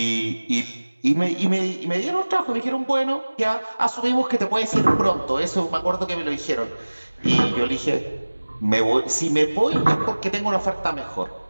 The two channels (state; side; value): inverted; both; correlation -1.00